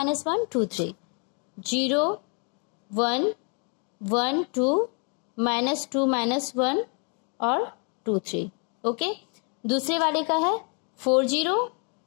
2 3, 0 1 1 2 -2 -1 और 2 3, ओके। दूसरे वाले का है 4 0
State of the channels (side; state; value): right; quieter; 38.1 dB